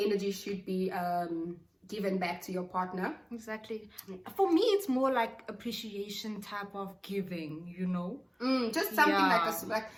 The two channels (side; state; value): both; identical; correlation 1.00